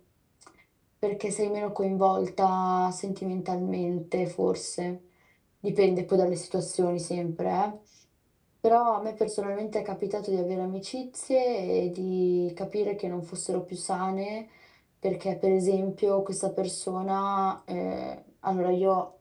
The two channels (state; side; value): identical; both; correlation 1.00